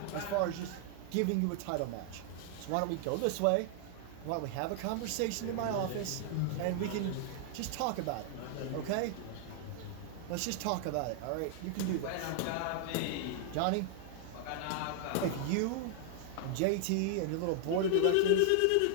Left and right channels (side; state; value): both; different; correlation -0.01